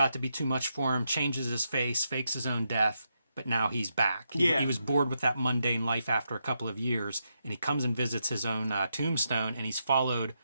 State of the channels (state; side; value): inverted; both; correlation -0.83